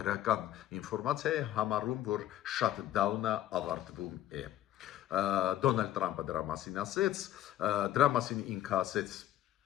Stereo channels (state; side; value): quieter; right; 12.8 dB